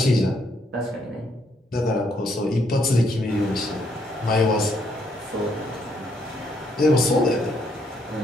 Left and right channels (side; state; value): both; normal; correlation 0.72